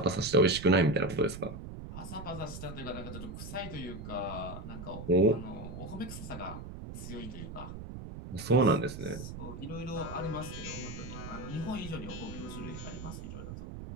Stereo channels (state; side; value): noise; right; rumble, 10 dB below the sound